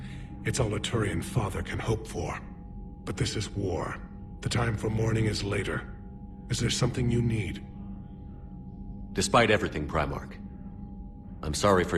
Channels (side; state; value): both; identical; correlation 1.00